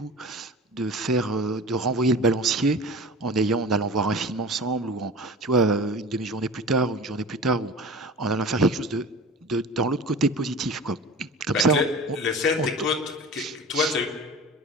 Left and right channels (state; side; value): normal; both; correlation 0.37